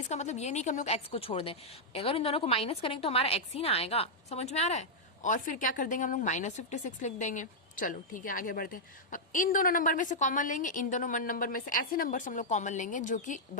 मतलब ये नहीं कि हम लोग x को छोड़ दें। अगर इन दोनों को माइनस करेंगे तो हमारा x ही ना आएगा, समझ में आ रहा है। और फिर क्या कर देंगे हम लोग, -56 लिख देंगे। चलो ठीक है, आगे बढ़ते हैं। अब इन दोनों नंबर में से कॉमन लेंगे, इन दोनों नंबर में से ऐसे नंबर्स हम लोग कॉमन लेंगे जो कि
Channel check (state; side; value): normal; both; correlation -0.06